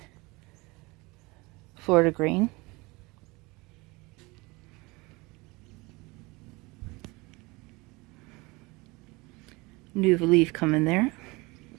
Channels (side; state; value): left; quieter; 24.4 dB